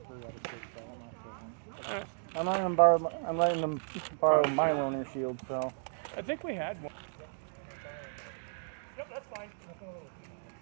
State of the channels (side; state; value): left; silent; digital silence